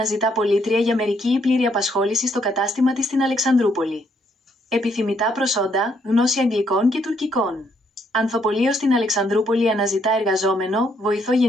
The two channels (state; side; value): normal; both; correlation 0.71